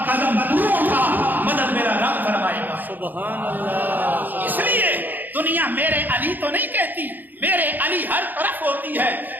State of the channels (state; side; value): late; left; 0.087 ms